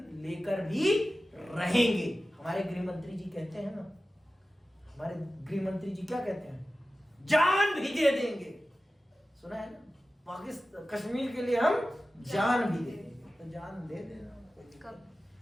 लेकर भी रहेंगे। हमारे गृह मंत्री जी कहते हैं ना, हमारे गृह मंत्री जी क्या कहते हैं? जान भी दे देंगे। सुना है ना? पाकिस्तान कश्मीर के लिए हम जान भी दे देंगे। तो जान दे देना।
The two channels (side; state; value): both; normal; correlation 0.95